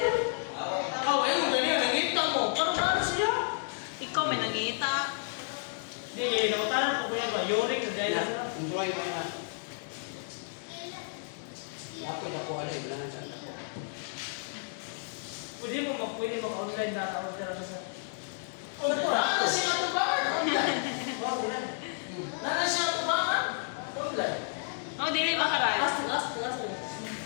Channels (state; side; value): silent; right; digital silence